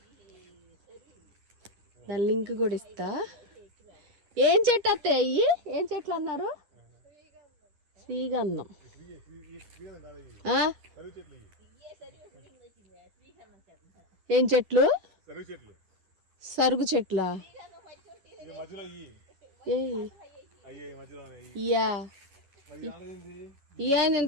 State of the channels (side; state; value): left; late; 10 ms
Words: దాని లింక్ కూడా ఇస్తా. ఏం చెట్టు అత్తయ్య అయ్యి? ఏం చెట్లు అన్నారు? శ్రీగంధం. ఏం చెట్లు? సరుగు చెట్లా?